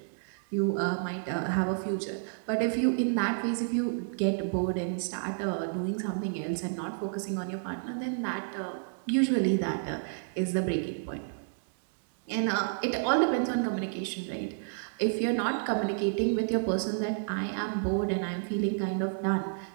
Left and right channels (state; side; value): silent; left; 58 dB below the other